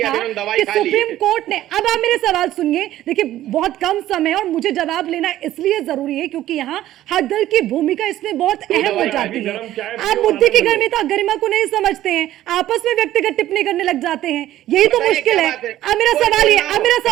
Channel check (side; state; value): left; quieter; 13.7 dB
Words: कि सुप्रीम कोर्ट ने, अब आप मेरे सवाल सुनिए, देखिए बहुत कम समय और मुझे जवाब लेना इसलिए जरूरी है क्योंकि यहाँ हर दल की भूमिका इसमें बहुत अहम हो जाती है। आप मुद्दे की गरिमा को नहीं समझते हैं, आपस में व्यक्तिगत टिप्पणी करने लग जाते हैं, यही तो मुश्किल है। अब मेरा सवाल ये, अब मेरा